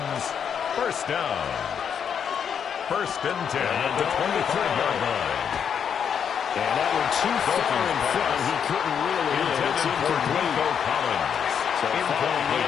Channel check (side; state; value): right; quieter; 7.7 dB